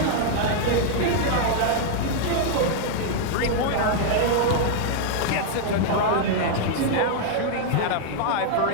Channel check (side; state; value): both; different; correlation -0.01